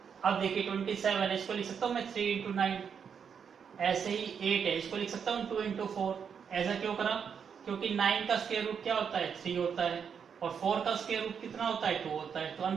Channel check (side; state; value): left; quieter; 7.0 dB